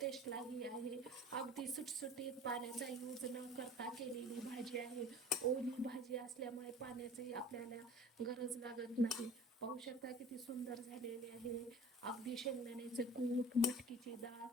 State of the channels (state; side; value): normal; both; correlation 0.43